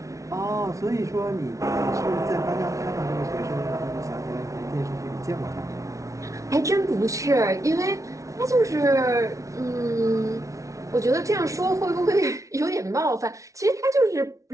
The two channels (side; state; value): left; late; 0.15 ms